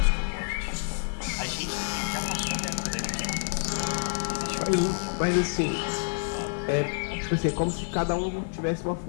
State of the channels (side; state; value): right; silent; 59 dB below the other